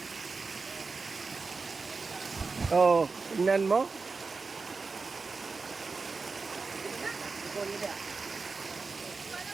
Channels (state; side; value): quieter; left; 4.3 dB